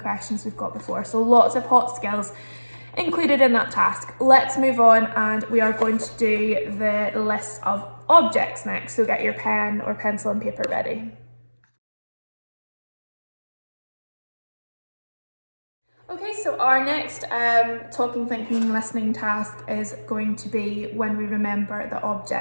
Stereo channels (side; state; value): both; inverted; correlation -1.00